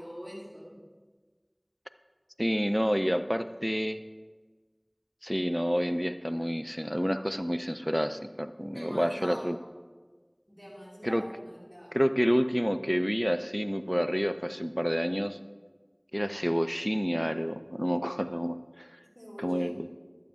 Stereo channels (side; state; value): both; identical; correlation 1.00